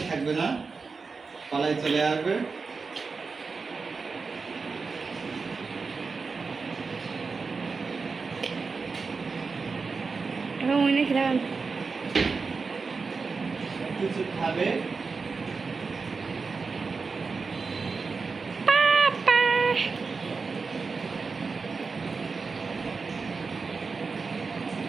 থাকবে না, পালায় চলে আসবে। কিছু খাবে,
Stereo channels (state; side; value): quieter; left; 4.6 dB